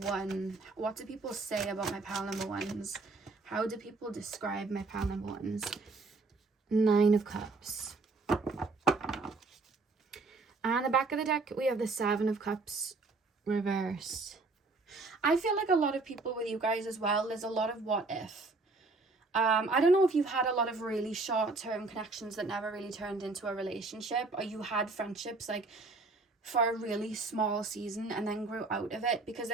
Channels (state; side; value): quieter; left; 3.6 dB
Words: What do people say about my pile number 1s? How do people describe my pile number 1s? 9 of Cups. And the back of the deck, we have the 7 of Cups reversed. I feel like a lot of people with you guys as well, there's a lot of what if. I don't know if you've had a lot of really short-term connections that never really turned into a relationship, or you had friendships like for a really small season and then grew out of it, because